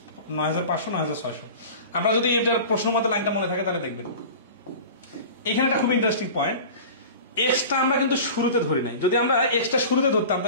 9,500 9,600। আমরা যদি এটার প্রশ্ন মতো লাইনটা মনে থাকে তাহলে দেখবেন এখানে একটা খুব ইন্টারেস্টিং পয়েন্ট, এক্সটা আমরা কিন্তু শুরুতে ধরি নাই। যদি আমরা এক্সটা শুরুতে ধরতাম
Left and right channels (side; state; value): both; inverted; correlation -0.36